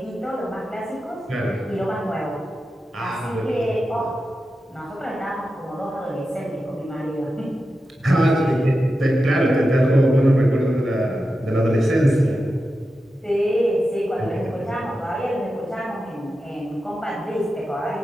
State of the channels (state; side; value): normal; both; correlation 0.91